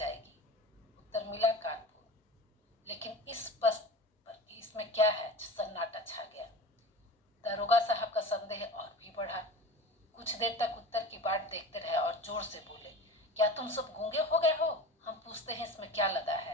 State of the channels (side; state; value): both; normal; correlation 0.34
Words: उत्तर मिला, कानपुर। लेकिन इस बस पर इसमें क्या है। सन्नाटा छा गया। दरोगा साहब का संदेह और भी बढ़ा। कुछ देर तक उत्तर की बाट देखते रहे और जोर से बोले, क्या तुम सब गूंगे हो गए हो। हम पूछते हैं इसमें क्या लदा